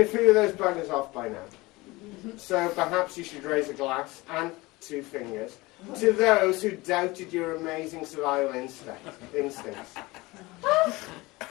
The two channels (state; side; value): quieter; right; 21.7 dB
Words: a few of those buggers off by now. So perhaps you should raise a glass and 2 fingers to those who doubted your amazing survival instincts.